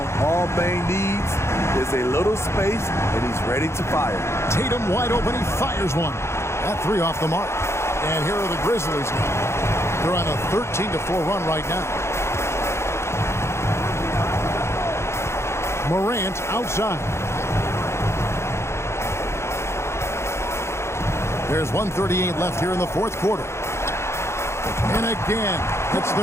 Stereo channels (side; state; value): right; late; 0.13 ms